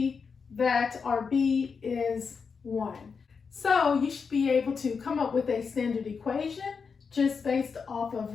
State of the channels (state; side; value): quieter; right; 5.6 dB